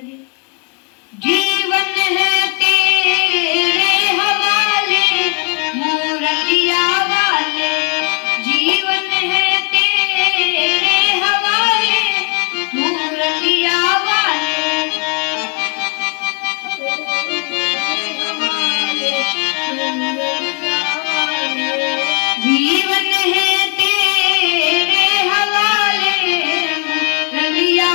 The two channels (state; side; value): quieter; right; 34.4 dB